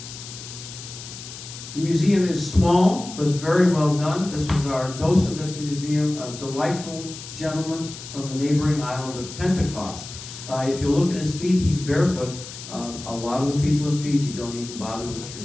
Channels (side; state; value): left; noise; hiss, 12 dB below the sound